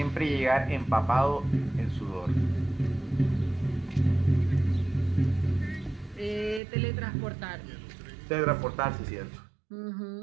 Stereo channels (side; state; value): left; drops out; at 6.6 s